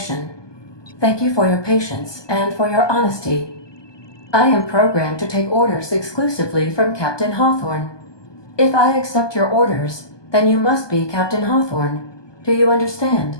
Thank you for your patience and for your honesty. I am programmed to take orders exclusively from Captain Hawthorne. If I accept your orders, then you must be Captain Hawthorne. Do you understand?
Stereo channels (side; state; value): right; late; 1.2 ms